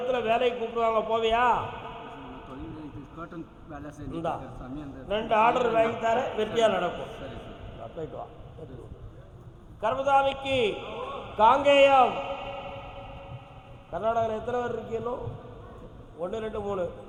வேலைக்கு கூப்பிடுவாங்க, போவியா? இந்தா 2 ஆர்டர் வாங்கி தர, வெற்றியாக நடக்கும். போயிட்டு வா. கர்மசாமிக்கு காங்கேயம். கர்நாடகாவில் எத்தனை பேர் இருக்கீங்களோ? 1 2 3.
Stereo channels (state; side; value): identical; both; correlation 1.00